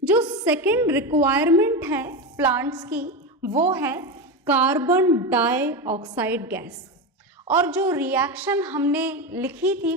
जो सेकेंड रिक्वायरमेंट है प्लांट्स की वो है कार्बन डाइऑक्साइड गैस। और जो रिएक्शन हमने लिखी थी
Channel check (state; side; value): normal; both; correlation 0.17